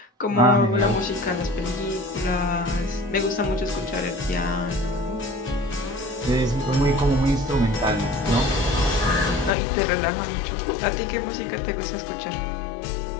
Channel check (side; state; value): right; drops out; at 9.5 s